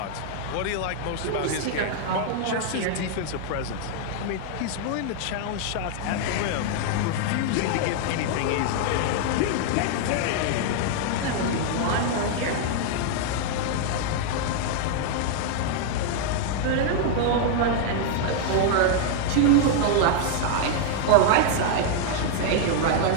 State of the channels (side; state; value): both; different; correlation 0.00